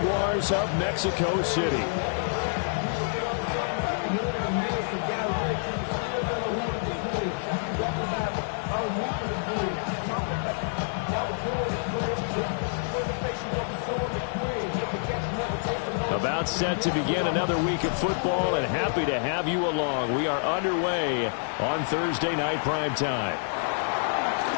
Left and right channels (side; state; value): right; silent; digital silence